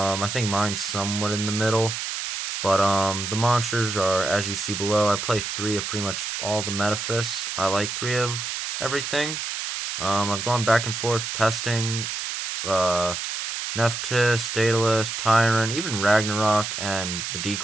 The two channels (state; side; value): noise; right; hiss, 4 dB below the sound